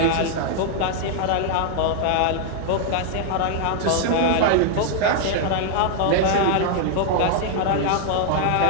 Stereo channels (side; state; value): both; different; correlation 0.00